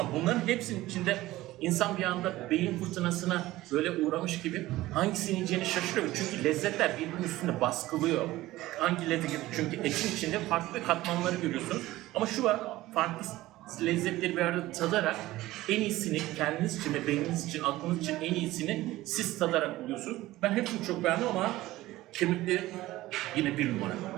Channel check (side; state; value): left; quieter; 17.1 dB